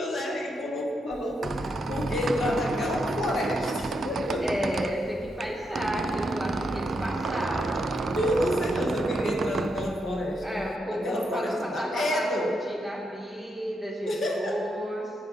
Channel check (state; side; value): normal; both; correlation 0.81